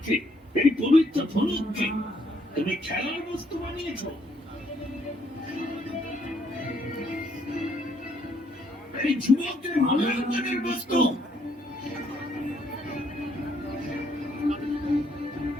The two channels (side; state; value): both; normal; correlation 0.70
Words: এই পবিত্র ধনুককে তুমি খেলার বস্তু বানিয়েছ। এই যুবকদের মূল্যায়নের বস্তু।